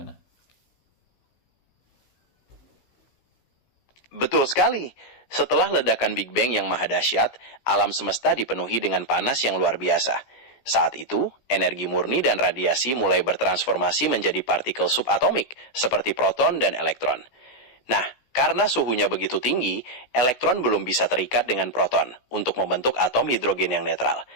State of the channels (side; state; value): right; late; 16 ms